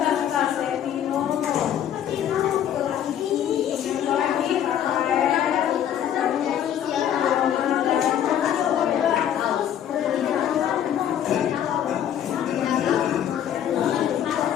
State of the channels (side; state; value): right; quieter; 10.1 dB